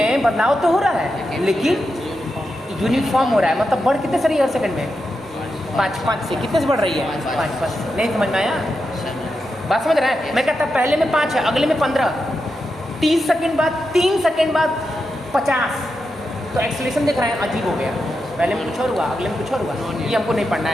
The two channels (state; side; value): normal; both; correlation 0.87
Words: बदलाव तो हो रहा है, लेकिन यूनिफॉर्म हो रहा है। मतलब बढ़ कितने से रही है हर सेकंड में? 5 से। कितने से बढ़ रही है? 5 से। नहीं समझ में आया? बात समझ रहा है? मैं कहता पहले में 5 है, अगले में 15, 30 सेकंड बाद, 3 सेकंड बाद 50, तो एक्सेलरेशन देख रहे हैं, अजीब हो गया। पहले में कुछ और हुआ, अगले में कुछ और हुआ, ये हमको नहीं पढ़ना